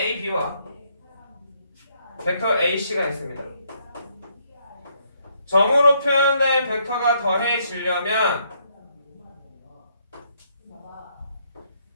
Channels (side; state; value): both; inverted; correlation -0.72